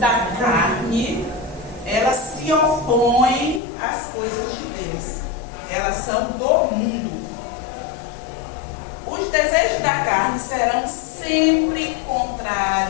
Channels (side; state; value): right; drops out; at 3.6 s